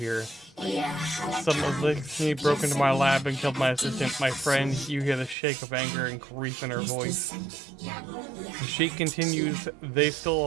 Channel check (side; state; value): left; drops out; at 5.4 s